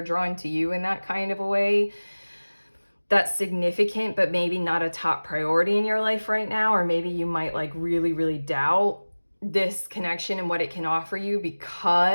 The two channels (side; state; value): both; inverted; correlation -1.00